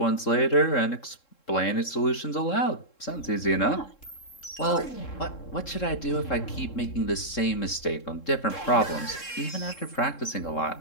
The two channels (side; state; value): right; late; 3.7 ms